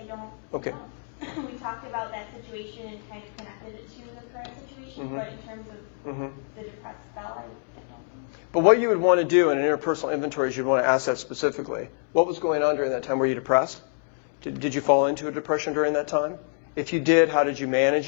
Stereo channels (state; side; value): silent; right; 61 dB below the other